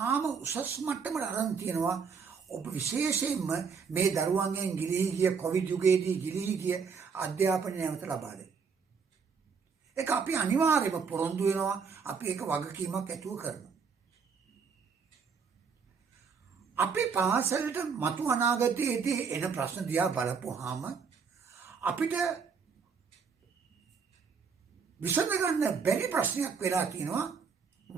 උසස් මට්ටමට අරන් තියෙනවා. ඔබ විශේෂයෙන්ම මේ දරුවන්ගෙන් ගිලිහි ගිය කොවිඩ් යුගයේදී ගිලිහි ගිය අධ්‍යාපනය නැවත ලබා දෙන්න. ඒක අපි අනිවාර්යයෙන්ම පොරොන්දු වෙනවා. අපි ඒක වගකීමක් ඇතුව කරනවා. අපි පාසලට මතු අනාගතයේදී එන ප්‍රශ්න දිහා බලපුවාම අපිට විසඳගන්න බැරි ප්‍රශ්නයක් වෙලා තියෙනවා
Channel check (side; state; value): left; quieter; 5.8 dB